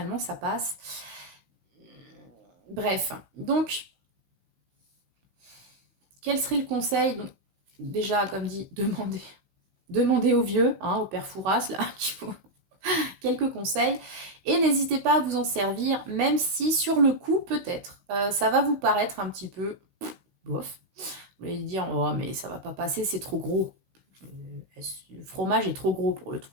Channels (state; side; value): late; left; 16 ms